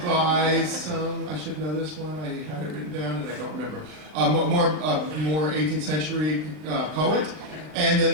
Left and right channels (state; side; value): late; left; 39 ms